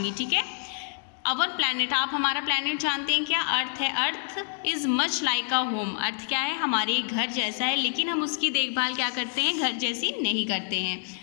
ठीक है, अवर प्लैनेट, आप हमारा प्लैनेट जानते हैं क्या? अर्थ है। Earth is much like a home. Earth क्या है? हमारे घर जैसा है, लेकिन हम उसकी देखभाल क्या करते हैं? घर जैसी नहीं करते हैं।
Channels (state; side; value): silent; right; 60 dB below the other